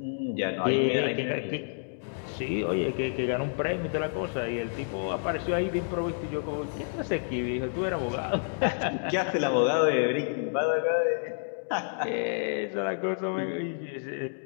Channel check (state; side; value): silent; right; digital silence